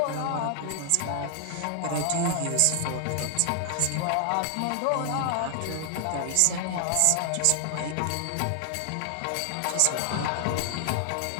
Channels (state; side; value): different; both; correlation 0.00